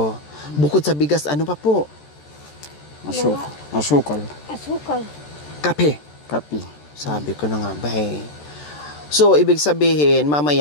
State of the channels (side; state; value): right; late; 14 ms